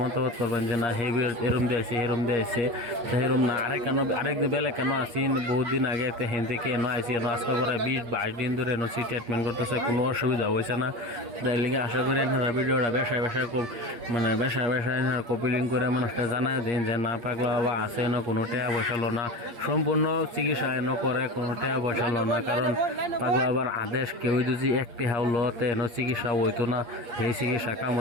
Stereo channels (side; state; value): left; late; 8.5 ms